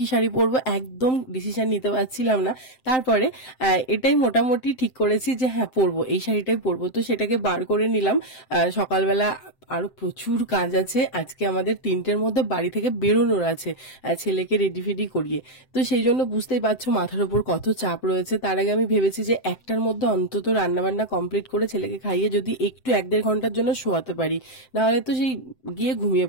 পরবো একদম ডিসিশন নিতে পারছিলাম না। তারপরে এটাই মোটামুটি ঠিক করেছি যে হ্যাঁ পরবো, এই শাড়িটাই পরবো। তো সেটাকে বার করে নিলাম। সকালবেলা আরো প্রচুর কাজ আছে আজকে, আমাদের 3টের মধ্যে বাড়ি থেকে বেরোনোর আছে, ছেলেকে রেডি ফেডি করিয়ে। তো সেই জন্য বুঝতেই পারছো মাথার উপর কত চাপ রয়েছে। তার আগে আমি ভেবেছি যে 1টার মধ্যে অন্তত রান্নাবান্না কমপ্লিট করে ছেলেকে খাইয়ে যদি একটু 1-1.5 ঘন্টার জন্য শোয়াতে পারি, নাহলে তো সেই গিয়ে ঘুমিয়ে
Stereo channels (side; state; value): right; late; 7.7 ms